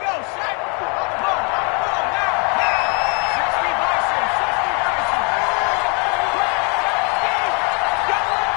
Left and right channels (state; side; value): quieter; right; 34.5 dB